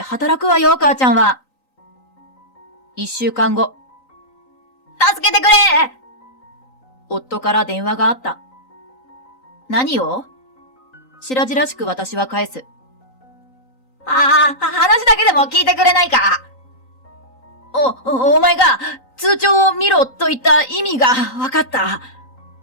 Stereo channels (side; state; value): right; late; 3.9 ms